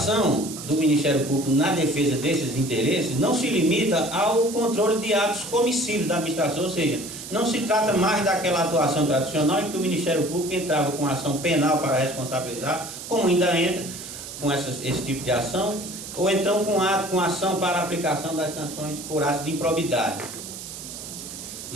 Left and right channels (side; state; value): right; noise; hiss, 11 dB below the sound